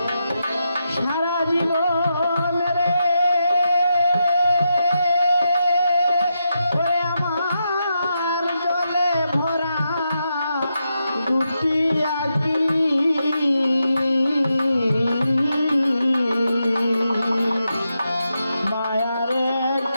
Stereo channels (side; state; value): both; inverted; correlation -0.85